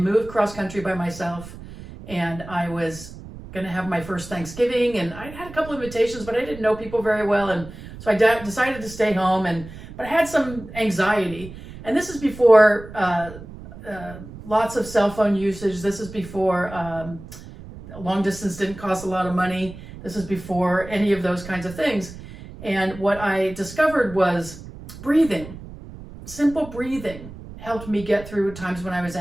moved cross country by myself, and I was going to have my first Thanksgiving, and I had a couple of invitations, but I didn't know people very well, and so I decided to stay home, but I had some anxiety. And this is before lots of cell phone usage. This is before long distance didn't cost a lot of money. This is before any of those kinds of things. And what I discovered was breathing. Simple breathing helped me get through times when I was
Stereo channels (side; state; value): right; noise; rumble, 15 dB below the sound